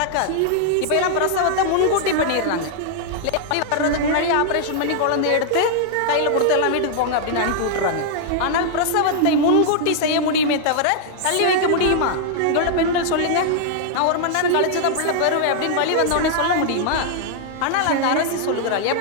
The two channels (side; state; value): both; different; correlation -0.01